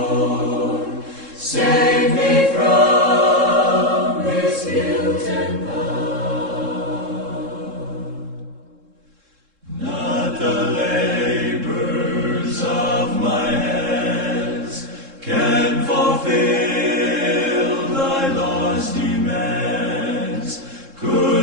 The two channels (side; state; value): left; late; 3.7 ms